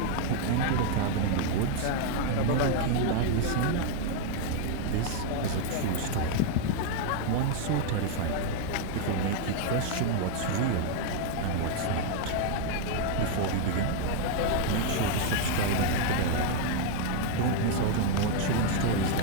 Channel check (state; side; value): different; both; correlation 0.00